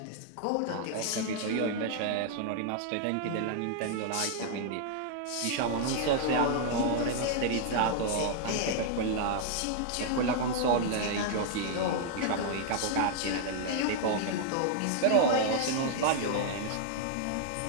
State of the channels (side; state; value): both; different; correlation 0.00